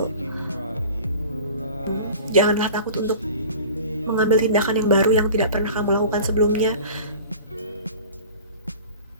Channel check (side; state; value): both; inverted; correlation -0.40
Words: Janganlah takut untuk mengambil tindakan yang baru yang tidak pernah kamu lakukan sebelumnya.